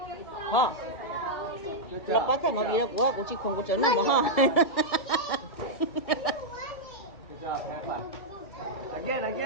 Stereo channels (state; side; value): late; right; 2.3 ms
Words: you so Hả? much. Là bắt thành mà vì là của chị không có chấn nào mà ha. Good job, have fun.